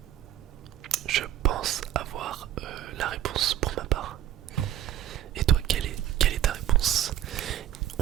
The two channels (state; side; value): quieter; left; 11.9 dB